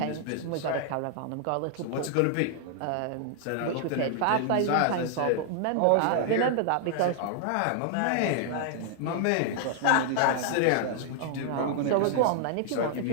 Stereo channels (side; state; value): both; different; correlation 0.00